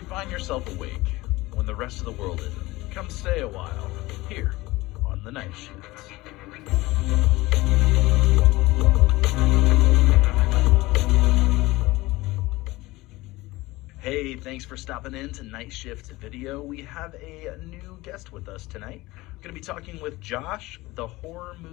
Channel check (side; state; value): right; quieter; 19.9 dB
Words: find yourself awake when the rest of the world isn't, come stay a while here on the Night Shift. Hey, thanks for stopping in to Night Shift Video. We have a new guest with us tonight. I'm going to be talking with Josh, the Horror